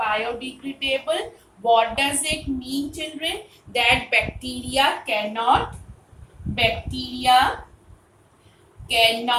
What does it mean, children? That bacteria cannot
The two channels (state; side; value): identical; both; correlation 1.00